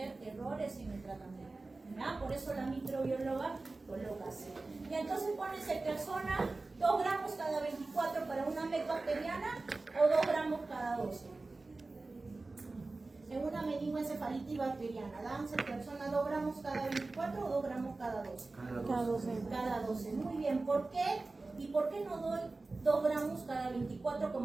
errores en el tratamiento, ¿verdad? Por eso la microbióloga coloca así. Y entonces pone ceftriaxona 2 gramos cada 24 para una MEC bacteriana o 2 gramos cada 12. En una meningoencefalitis bacteriana, dan ceftriaxona 2 gramos cada 24 o 2 gramos cada 12. Cada 12. Cada 12. Muy bien, ¿por qué? ¿Y por qué no doy 2 gramos cada 24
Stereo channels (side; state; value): left; quieter; 3.4 dB